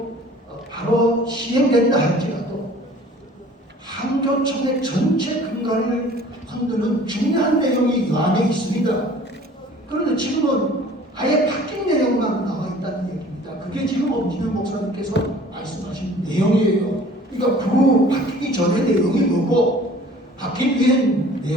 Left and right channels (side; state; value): both; normal; correlation 0.49